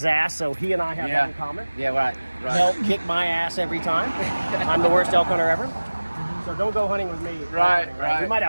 ass, so he and I have that in common. Yeah, right. Elk kick my ass every time. I'm the worst elk hunter ever. So don't go hunting with me. Right. We might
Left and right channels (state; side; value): inverted; both; correlation -1.00